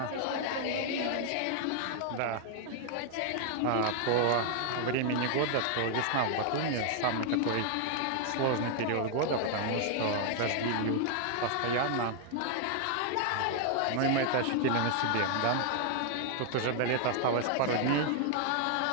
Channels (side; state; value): both; different; correlation 0.00